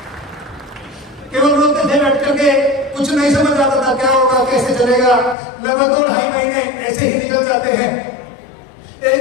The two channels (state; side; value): drops out; right; at 5.4 s